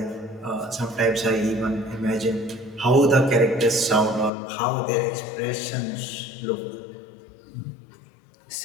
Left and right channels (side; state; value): right; drops out; at 4.3 s